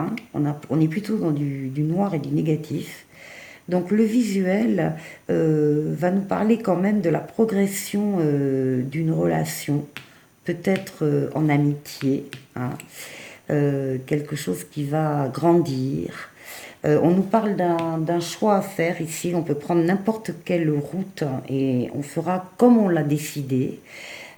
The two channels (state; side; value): identical; both; correlation 1.00